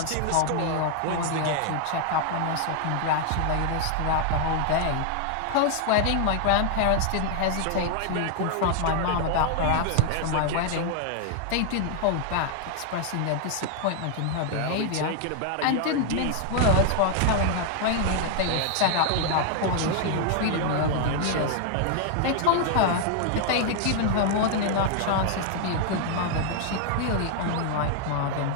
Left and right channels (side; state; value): both; different; correlation 0.00